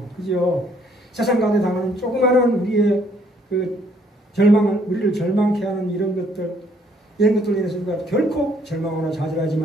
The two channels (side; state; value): both; normal; correlation 0.65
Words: 그죠? 세상 가운데 당하는 조그마한 우리의 그 우리를 절망케 하는 이런 것들로 인해서 우리가 결코 절망하거나 좌절하지